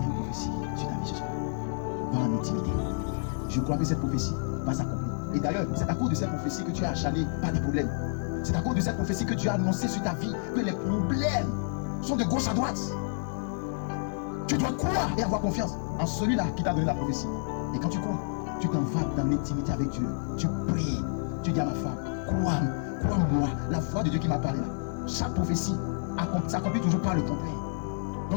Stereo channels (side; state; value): right; silent; 58 dB below the other